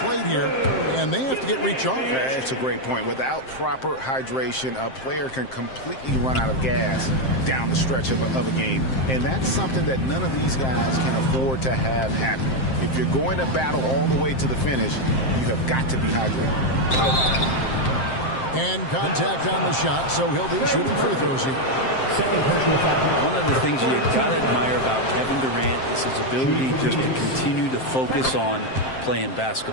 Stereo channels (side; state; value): right; late; 7.6 ms